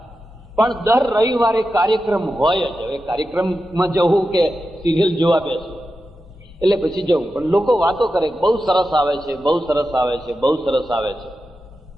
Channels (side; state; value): both; normal; correlation 0.91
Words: પણ દર રવિવારે કાર્યક્રમ હોય જ. હવે કાર્યક્રમમાં જવું કે સિરિયલ જોવા બેસવું એટલે પછી જવું. પણ લોકો વાતો કરે, બહુ સરસ આવે છે, બહુ સરસ આવે છે, બહુ સરસ આવે છે.